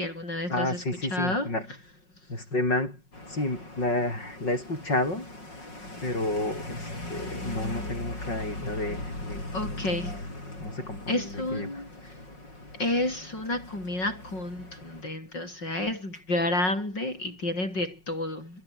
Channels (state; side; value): late; right; 5.5 ms